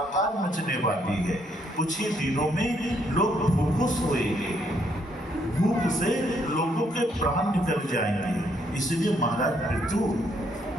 मचने वाली है। कुछ ही दिनों में लोग भूखों सोएंगे, भूख से लोगों के प्राण निकल जाएंगे। इसलिए महाराज पृथु,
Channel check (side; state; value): both; normal; correlation 0.71